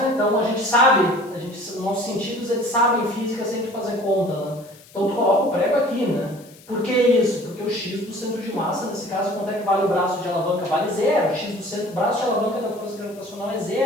Então a gente sabe, nossos sentidos eles sabem física sem tu fazer conta. Né? Então tu coloca o prego aqui, né? Por que isso? Porque o x do centro de massa, nesse caso, quanto é que vale o braço de alavanca? Vale zero. O x do centro, braço de alavanca da força gravitacional é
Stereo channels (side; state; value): left; noise; hiss, 24 dB below the sound